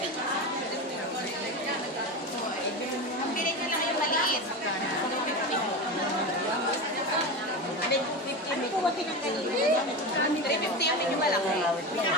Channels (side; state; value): both; normal; correlation 0.22